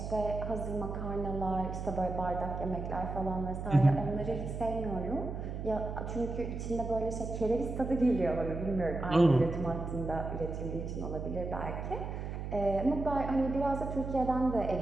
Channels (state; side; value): noise; right; hum, 5 dB below the sound